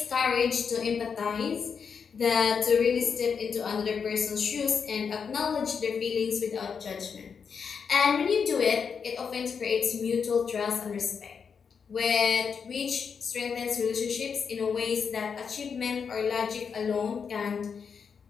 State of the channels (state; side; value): quieter; right; 6.3 dB